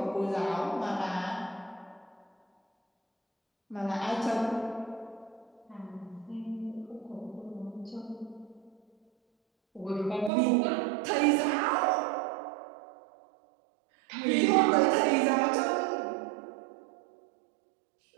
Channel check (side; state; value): left; drops out; at 10.3 s